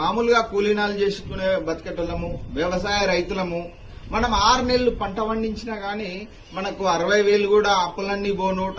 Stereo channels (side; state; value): both; identical; correlation 1.00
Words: కూలీనాలు చేసుకునే బతికేటోళ్ళము, వ్యవసాయ రైతులము. మనం 6 నెలలు పంట పండించినా గానీ మనకు 60,000 కూడా అప్పులన్నీ పోను,